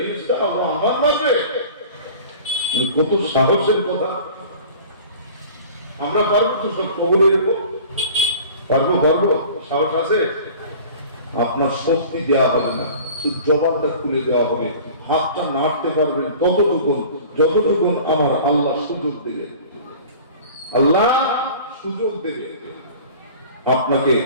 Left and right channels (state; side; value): inverted; both; correlation -0.43